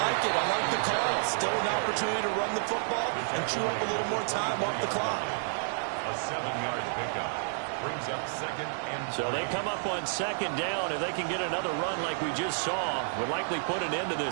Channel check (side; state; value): left; silent; digital silence